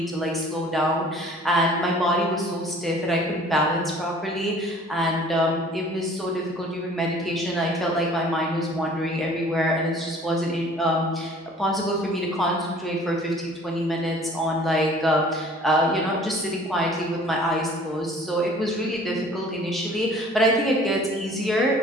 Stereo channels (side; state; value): both; normal; correlation 0.51